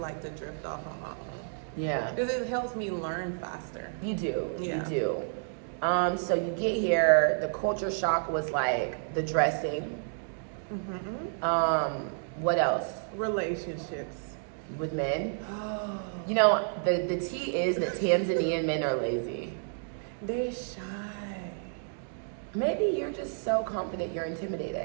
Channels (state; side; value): silent; left; digital silence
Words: to drift off on my own. Yeah. Because it helps me learn faster. You do. Yeah. You do. So you get here, the culture shock was like the dressing. What else? Relationships. With men? Oh. You know, the tea is that Tanzanian men are lazy. They're shy. Maybe you're just so confident you're